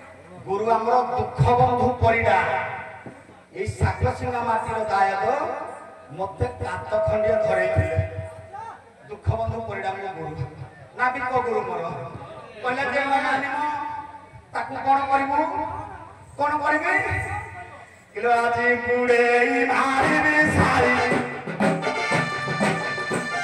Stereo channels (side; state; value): both; identical; correlation 1.00